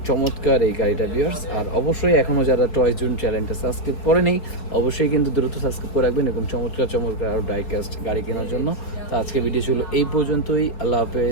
চমৎকার এই গাড়িটা ভিউয়ার্স। আর অবশ্যই এখনও যারা টয় জোন চ্যানেলটা সাবস্ক্রাইব করেনি অবশ্যই কিন্তু দ্রুত সাবস্ক্রাইব করে রাখবেন এবং চমৎকার চমৎকার আরও ডাইকাস্ট গাড়ি কেনার জন্য। তো আজকে ভিডিও ছিল এই পর্যন্তই, আল্লাহ হাফেজ,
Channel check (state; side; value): late; right; 4.7 ms